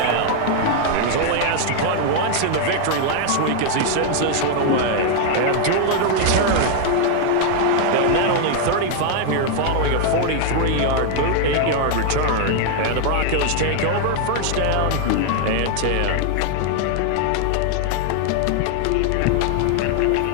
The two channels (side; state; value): both; different; correlation 0.00